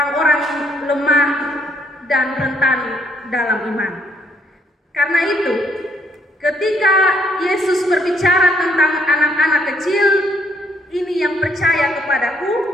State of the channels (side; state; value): both; normal; correlation 0.69